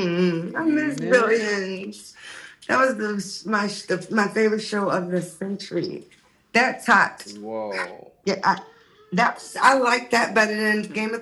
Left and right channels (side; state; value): both; identical; correlation 1.00